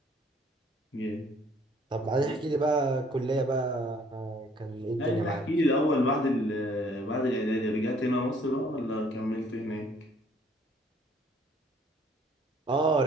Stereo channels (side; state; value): both; normal; correlation 0.60